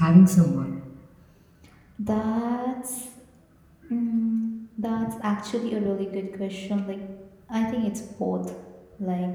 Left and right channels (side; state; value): both; identical; correlation 1.00